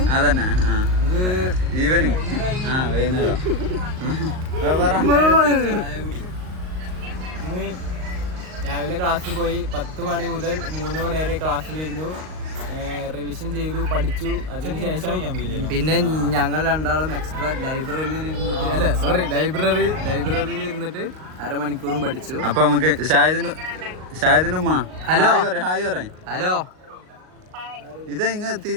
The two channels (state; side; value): late; left; 38 ms